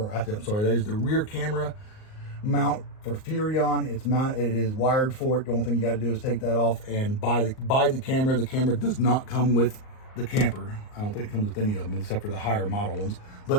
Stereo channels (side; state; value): right; late; 38 ms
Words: I'm sorry, that is the rear camera mount for Furrion. It's mounted, it is wired for it. The only thing you got to do is take that off and buy the camera. The camera does not come with the camper. I don't think it comes with any of them except for the higher model ones,